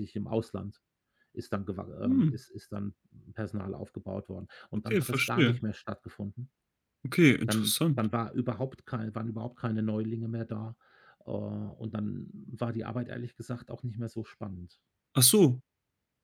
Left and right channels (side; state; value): both; identical; correlation 1.00